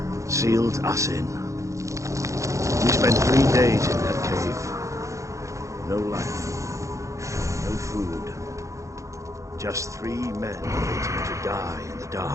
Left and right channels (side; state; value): left; late; 0.15 ms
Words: sealed us in. We spent 3 days in that cave. No light, no food, just 3 men waiting to die in the